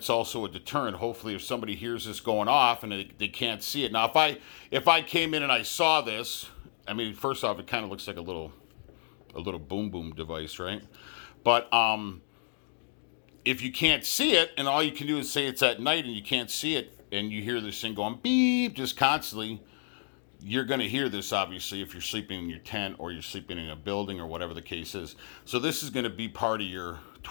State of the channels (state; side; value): silent; right; digital silence